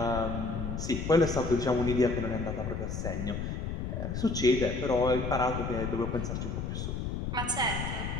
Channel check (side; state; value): left; noise; rumble, 3 dB below the sound